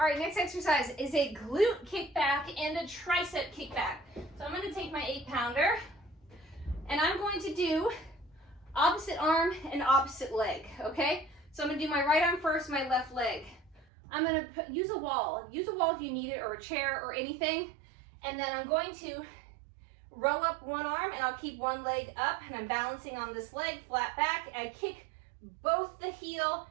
right, next exercise is a glute kickback and a tricep kickback. So I'm going to take my 8-pounder and I'm going to do opposite arm and opposite leg, okay? So I'm going to do my right arm first, my left leg. I'm going to use a wall. Use a wall if you need it, or a chair or anything. And then I'm going to row up one arm and I'll keep one leg up and I'm balancing on this leg, flat back. I kick both the heel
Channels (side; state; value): left; drops out; at 13.9 s